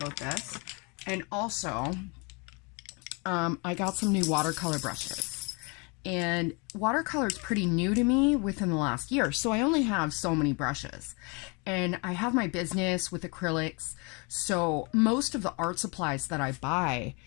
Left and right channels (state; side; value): quieter; right; 31.1 dB